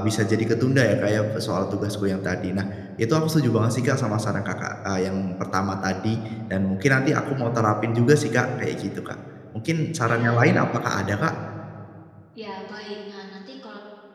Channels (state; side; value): identical; both; correlation 1.00